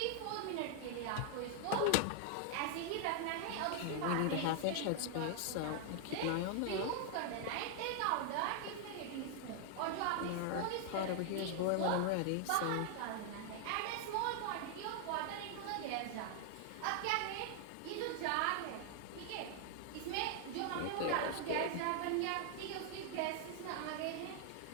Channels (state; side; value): different; both; correlation 0.00